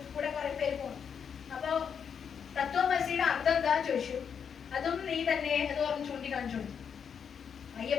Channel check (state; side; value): quieter; right; 7.2 dB